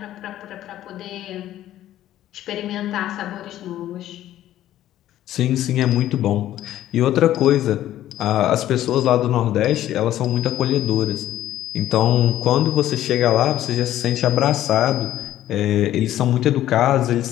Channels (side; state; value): right; quieter; 13.0 dB